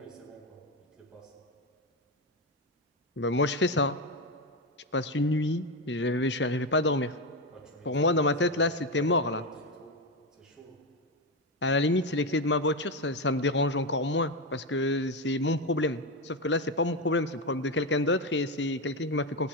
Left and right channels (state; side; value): normal; both; correlation 0.12